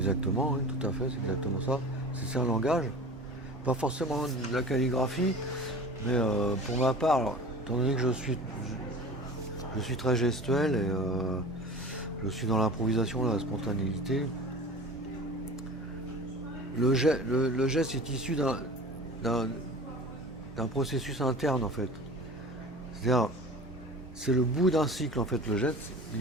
oui, tout à fait, c'est exactement ça. C'est un langage, pas forcément de la calligraphie, mais pour ma part, alors, étant donné que je suis très gestuel et je suis dans l'improvisation, la spontanéité, le geste est issu d'un processus interne en fait. C'est-à-dire, c'est le bout d'un cycle en fait, le geste, il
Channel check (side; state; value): both; normal; correlation 0.38